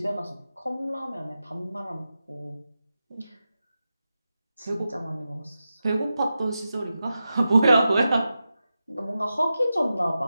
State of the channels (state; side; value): inverted; both; correlation -0.91